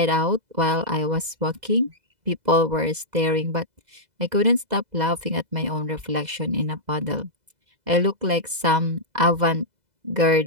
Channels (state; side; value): late; left; 2.0 ms